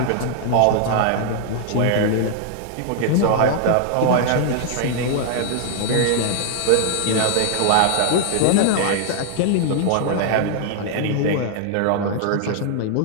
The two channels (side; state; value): both; different; correlation -0.01